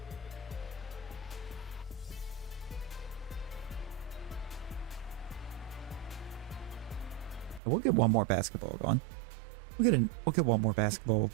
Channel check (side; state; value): left; drops out; at 7.6 s